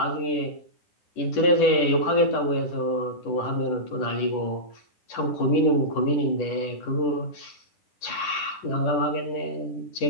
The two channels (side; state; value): right; late; 10 ms